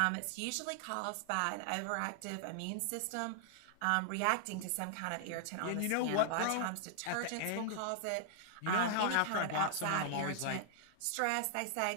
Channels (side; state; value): both; different; correlation -0.01